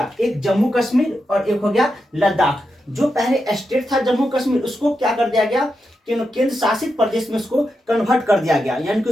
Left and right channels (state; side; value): normal; both; correlation 0.87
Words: एक जम्मू कश्मीर और एक हो गया लद्दाख। जो पहले स्टेट था जम्मू कश्मीर, उसको क्या कर दिया गया, केंद्र शासित प्रदेश में उसको कन्वर्ट कर दिया गया, यानी कि